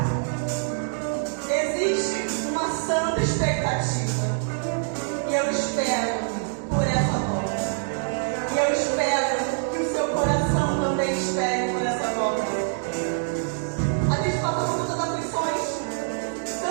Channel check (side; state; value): left; silent; digital silence